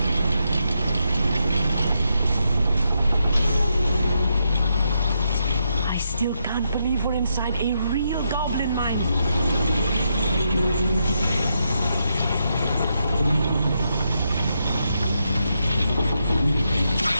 I still can't believe we're inside a real goblin mine.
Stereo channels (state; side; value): inverted; both; correlation -0.81